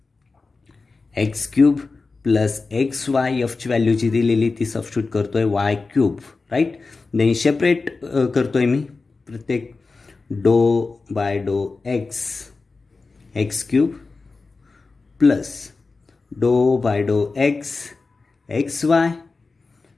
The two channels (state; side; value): quieter; right; 4.0 dB